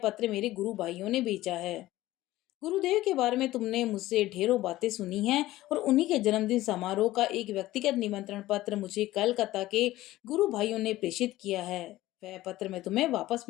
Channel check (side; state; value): right; quieter; 16.4 dB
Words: पत्र मेरे गुरु भाइयों ने भेजा है। गुरुदेव के बारे में तुमने मुझसे ढेरों बातें सुनी हैं और उन्हीं के जन्मदिन समारोह का एक व्यक्तिगत निमंत्रण पत्र मुझे कलकत्ता के गुरु भाइयों ने प्रेषित किया है। वह पत्र मैं तुम्हें वापस